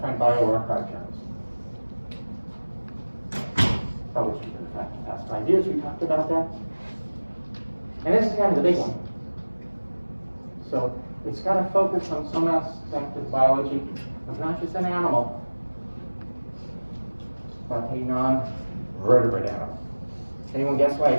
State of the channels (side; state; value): both; inverted; correlation -1.00